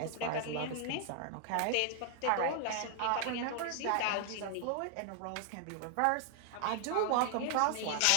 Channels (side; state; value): both; different; correlation 0.00